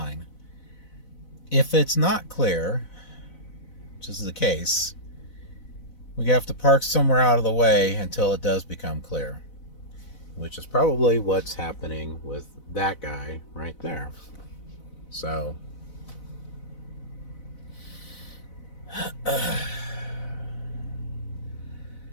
If it's not clear, which is the case, we have to park somewhere out of the way until it does become clear, which is probably what's happening with that guy right there. So I'm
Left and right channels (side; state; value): right; late; 4.0 ms